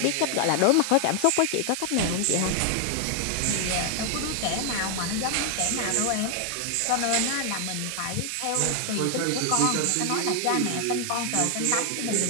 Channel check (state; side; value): different; both; correlation 0.00